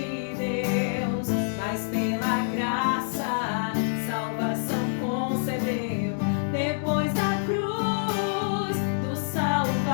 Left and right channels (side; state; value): right; silent; digital silence